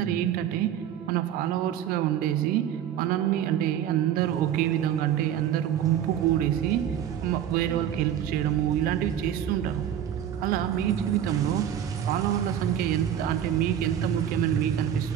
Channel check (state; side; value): quieter; left; 10.2 dB